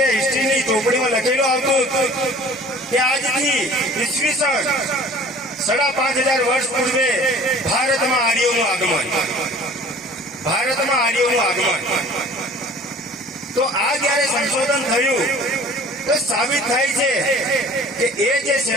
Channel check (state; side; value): normal; both; correlation 0.47